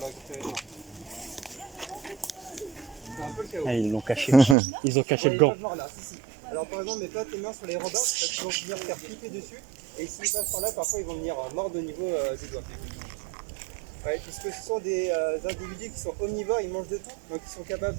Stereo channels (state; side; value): drops out; left; at 4.5 s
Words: Ah, ils l'ont caché. Ils ont caché le gant. Alors par exemple, mets pas tes mains sur les robards parce qu'ils vont venir faire flipper dessus. Et s'ils passent par là, parfois ils vont venir mordre au niveau du doigt. Ouais, puisque ce sont des individus qui sont omnivores, ils mangent de tout, donc ils sont capables